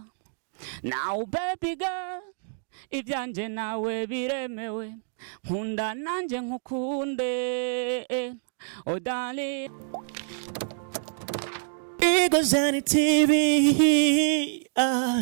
Now baby girl, ivyanje nawe biremewe, nkunda nanje nkukunde, oh darling. Igozani TV,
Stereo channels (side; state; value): left; silent; digital silence